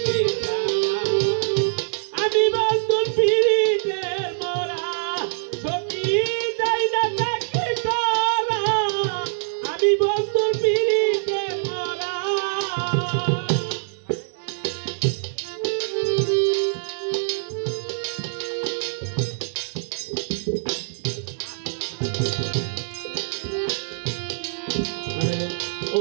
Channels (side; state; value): left; silent; digital silence